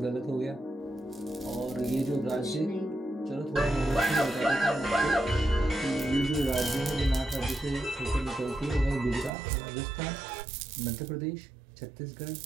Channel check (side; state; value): left; drops out; at 9.3 s